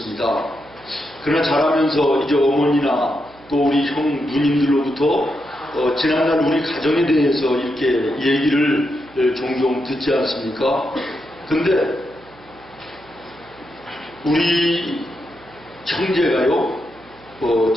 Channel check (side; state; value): right; noise; hum, 26 dB below the sound